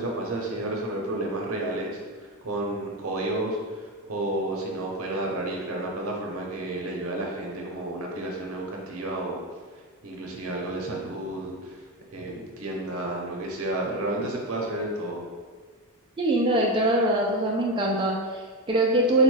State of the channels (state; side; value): normal; both; correlation 0.15